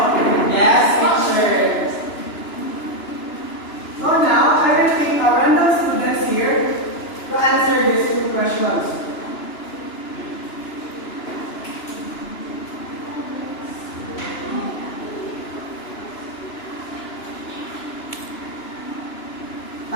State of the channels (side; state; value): right; late; 2.9 ms